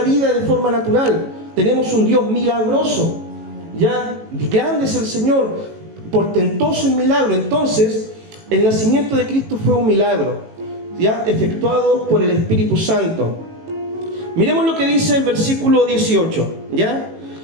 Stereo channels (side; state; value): left; late; 18 ms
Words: vida de forma natural. Tenemos un Dios milagroso, ¿ya? Grande es el Señor, portentoso en milagro. Entonces, el nacimiento de Cristo fue un milagro, ¿ya?, efectuado por el Espíritu Santo. Miremos lo que dice el versículo 18, ¿ya?